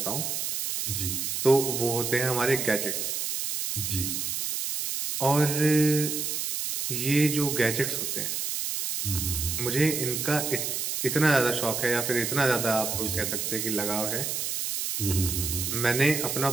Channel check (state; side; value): noise; right; hiss, 2 dB below the sound